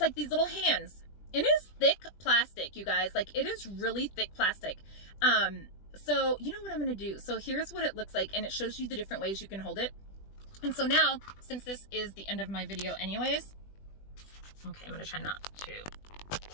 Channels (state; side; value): late; right; 20 ms